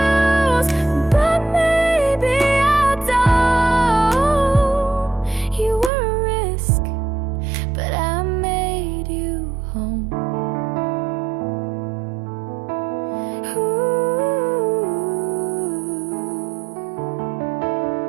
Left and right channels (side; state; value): left; drops out; at 5.9 s